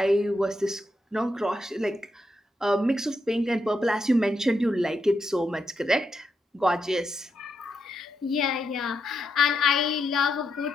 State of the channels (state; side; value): normal; both; correlation 0.82